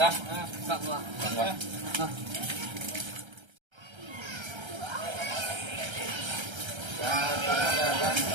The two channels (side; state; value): left; late; 1.3 ms